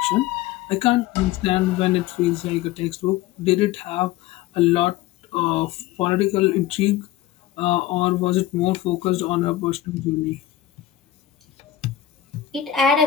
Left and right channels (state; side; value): quieter; right; 12.8 dB